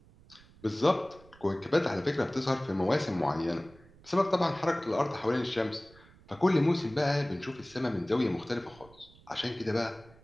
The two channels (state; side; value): noise; right; rumble, 25 dB below the sound